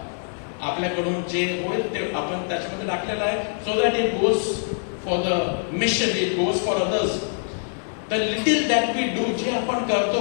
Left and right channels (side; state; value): right; silent; 63 dB below the other